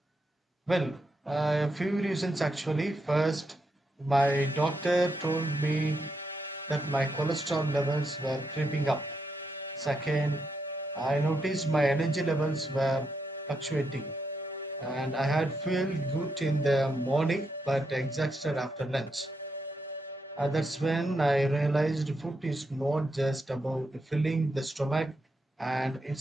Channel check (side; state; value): both; normal; correlation 0.82